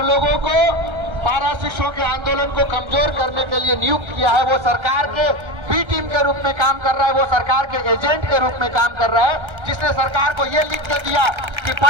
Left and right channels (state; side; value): late; left; 1.3 ms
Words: लोगों को पारा शिक्षकों के आंदोलन को कमजोर करने के लिए नियुक्त किया है। वो सरकार के बी टीम के रूप में काम कर रहा है, वो सरकार के एजेंट के रूप में काम कर रहा है, जिसने सरकार को ये लिख के दिया कि